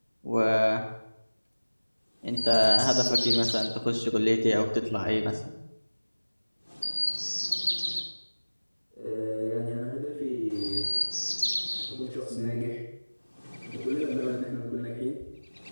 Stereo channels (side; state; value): both; inverted; correlation -1.00